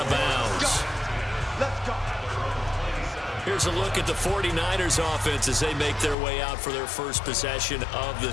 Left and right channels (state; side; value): drops out; right; at 6.2 s